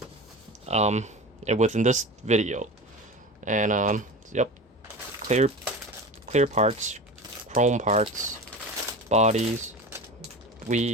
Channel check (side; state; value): both; normal; correlation 0.30